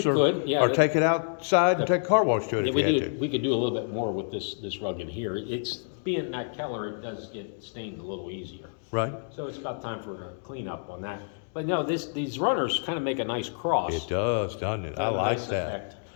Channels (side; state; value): right; silent; digital silence